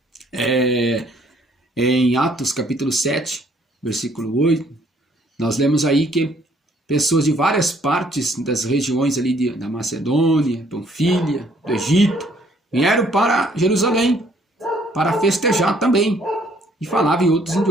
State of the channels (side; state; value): both; normal; correlation 0.63